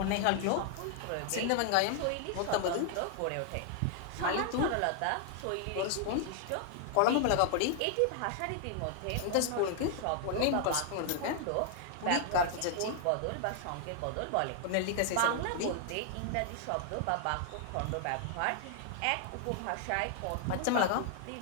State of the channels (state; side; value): different; both; correlation 0.00